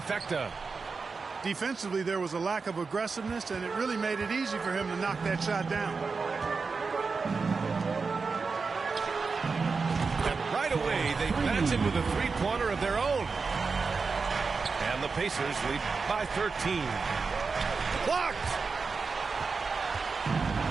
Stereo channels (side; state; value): left; quieter; 4.7 dB